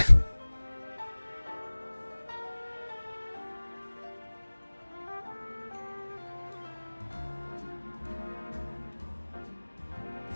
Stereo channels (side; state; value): both; inverted; correlation -1.00